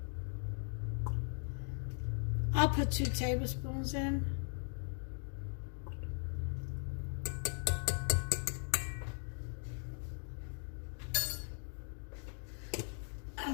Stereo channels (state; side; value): silent; right; 52 dB below the other